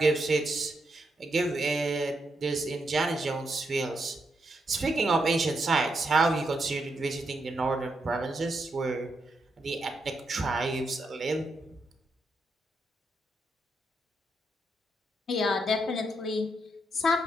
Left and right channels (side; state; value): both; normal; correlation 0.82